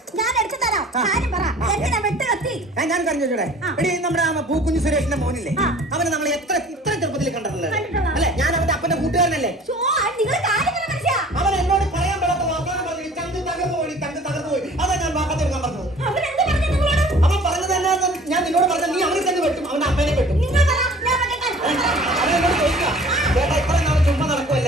ഞാൻ കറിഞ്ഞോടെ എടി, നമ്മുടെ പൂക്കുഞ്ഞു സുരേഷിന്റെ മോനില്ലേ, അവനെ നമ്മൾ ഇത്ര ചെറുപ്പത്തിൽ കണ്ടിട്ടില്ലേ അല്ലെ? ഞാൻ അവന്റെ അപ്പന്റെ കൂട്ടുകാരനല്ലേ. അവൻ എന്നോട് പറയാൻ പറ്റാത്ത വാർത്താനം പറഞ്ഞു, ചന്ത് തകർന്നു പോയി, ചന്ത് തകർന്നു പോയി. അതാ ഞാൻ വാക്കത്തെടുക്കാൻ പറഞ്ഞത്. അവൻ പറഞ്ഞത് തന്നെ ഞാൻ നിന്നോട് പറഞ്ഞ, നീ അവനെ തന്നെ വെട്ടും, അവന്റെ അമ്മേനെ വെട്ടും. അവനോട് ചോദിക്കാം, ചേട്ടാ ഇത്ര നാളെ ചുമ്മാ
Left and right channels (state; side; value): normal; both; correlation 0.48